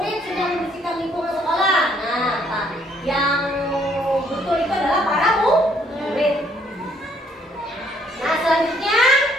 sedang membersihkan lingkungan sekolah. Nah, yang betul itu adalah para murid. Nah, selanjutnya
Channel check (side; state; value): both; normal; correlation 0.67